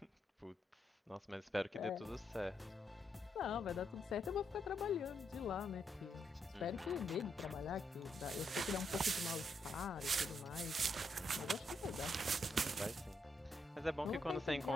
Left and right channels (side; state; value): both; normal; correlation 0.79